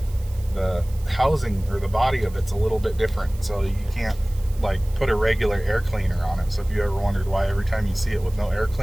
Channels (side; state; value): right; noise; hiss, 23 dB below the sound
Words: the housing or the body of it's a little bit different, so you can't like put a regular air cleaner on it. So if you ever wondered why every time you see it with no air